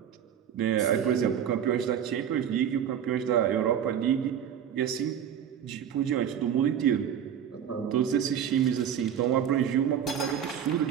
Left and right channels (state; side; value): quieter; left; 9.0 dB